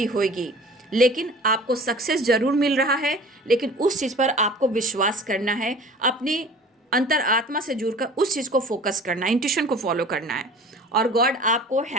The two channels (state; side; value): normal; both; correlation 0.43